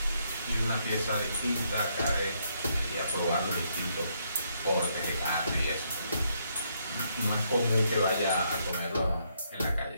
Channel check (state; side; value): inverted; both; correlation -0.74